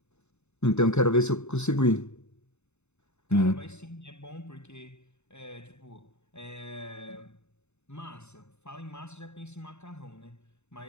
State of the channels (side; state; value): right; late; 0.82 ms